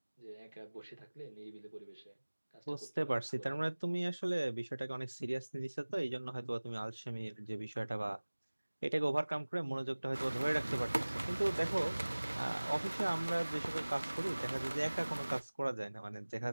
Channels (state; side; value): inverted; both; correlation -1.00